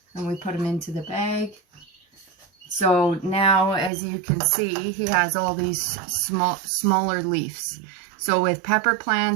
and we put him into the bag. So now, as you can see, he has all these smaller leaves. So with pepper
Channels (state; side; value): drops out; left; at 3.9 s